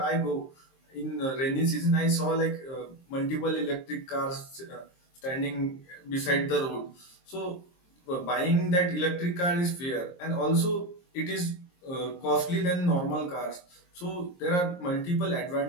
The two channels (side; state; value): right; late; 23 ms